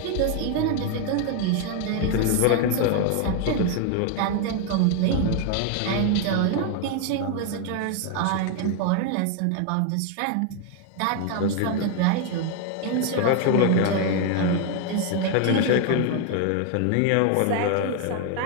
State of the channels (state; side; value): different; both; correlation 0.01